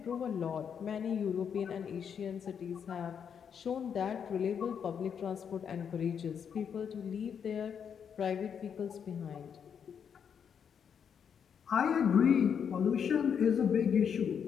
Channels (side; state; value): right; quieter; 7.5 dB